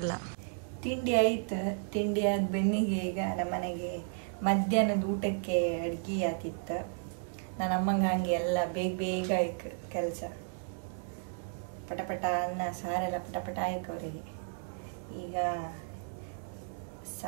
ತಿಂಡಿ ಆಯ್ತು. ತಿಂಡಿ ಆದ ಬೆನ್ನಿಗೆ ಈಗ ನಮ್ಮ ಮನೆಗೆ ಮಧ್ಯಾಹ್ನದ ಊಟಕ್ಕೆ ಅಡ್ಗೆ ಆತಿತ್ತು. ನನ್ನ ಅಮ್ಮಂಗೆ ಹಂಗೆ ಎಲ್ಲ ಬೇಗ ಆಯ್ತು ಕೆಲಸ. ಪಟಪಟ ಅನ್ನ ಸಾರೆಲ್ಲ ಪಟಪಟ ಆಯ್ತು ಅವರಿಗೆ. ಈಗ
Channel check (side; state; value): left; silent; digital silence